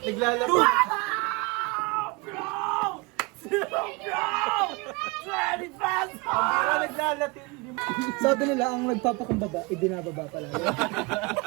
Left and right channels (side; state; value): left; quieter; 27.1 dB